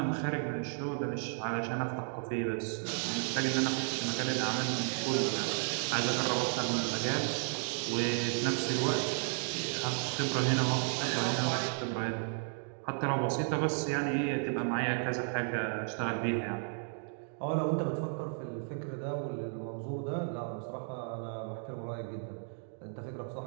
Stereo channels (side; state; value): left; silent; 55 dB below the other